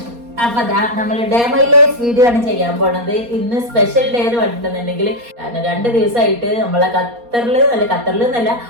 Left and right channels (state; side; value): late; left; 4.2 ms